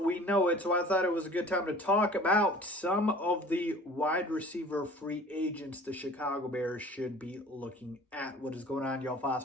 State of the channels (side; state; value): both; normal; correlation 0.46